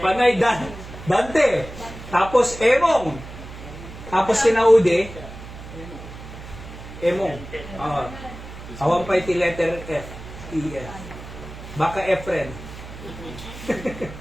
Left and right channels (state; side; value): noise; right; hum, 14 dB below the sound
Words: Panay Dante. Tapos, emong. Tapos, sinaude. Emong. Awan pa iti letter F. E-F. Baka Efren.